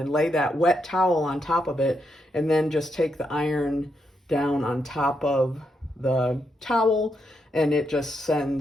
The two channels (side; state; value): both; normal; correlation 0.81